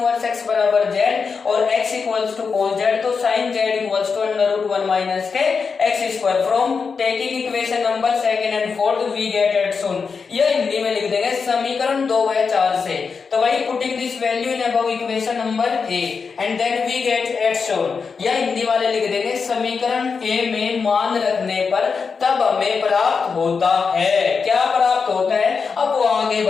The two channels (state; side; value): quieter; right; 5.3 dB